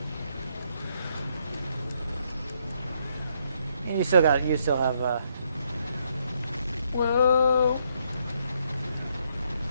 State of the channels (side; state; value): both; inverted; correlation -0.73